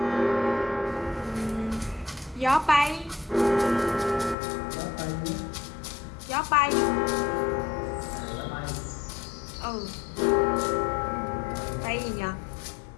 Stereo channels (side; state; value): right; drops out; at 4.4 s